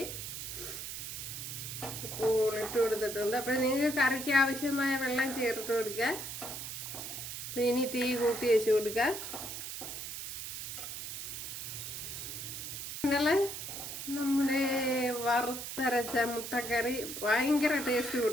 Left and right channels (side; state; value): right; noise; hiss, 7 dB below the sound